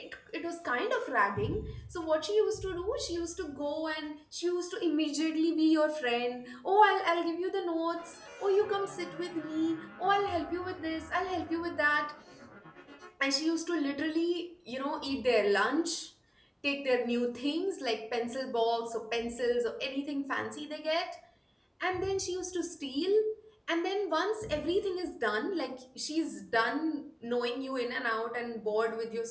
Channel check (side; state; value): both; identical; correlation 1.00